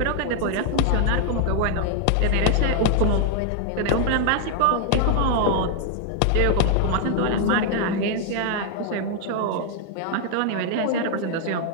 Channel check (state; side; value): different; both; correlation 0.00